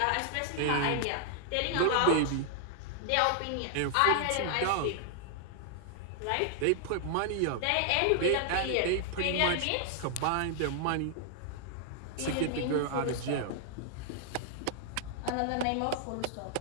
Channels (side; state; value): both; different; correlation 0.00